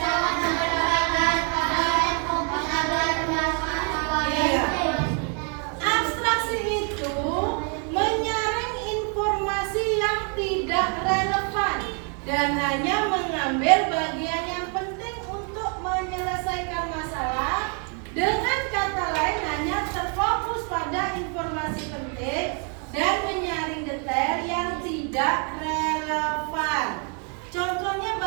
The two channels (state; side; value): quieter; left; 39.3 dB